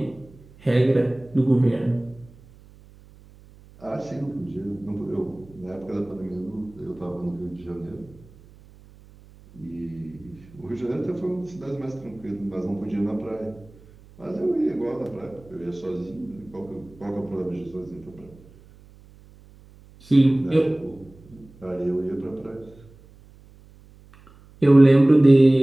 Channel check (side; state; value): right; noise; hum, 24 dB below the sound